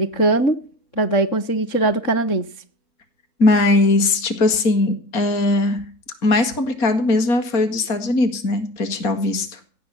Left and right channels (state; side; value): late; right; 4.2 ms